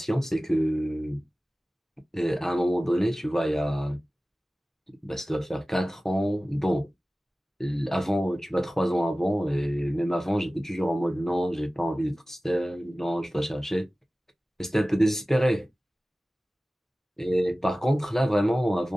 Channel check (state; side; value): normal; both; correlation 0.97